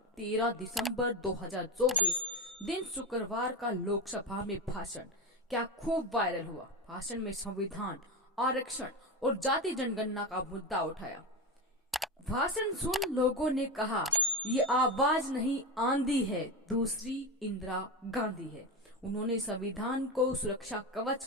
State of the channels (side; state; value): both; normal; correlation 0.17